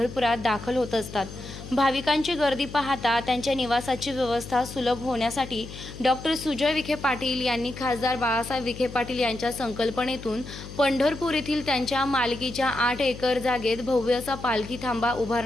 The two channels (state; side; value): noise; left; hum, 12 dB below the sound